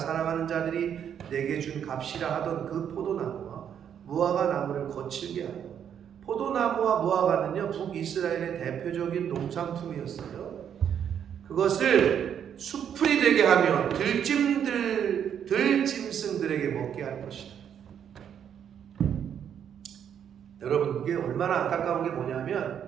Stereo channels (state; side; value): quieter; left; 8.7 dB